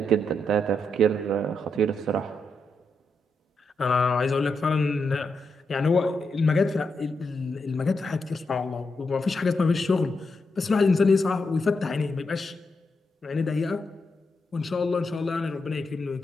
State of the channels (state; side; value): normal; both; correlation 0.84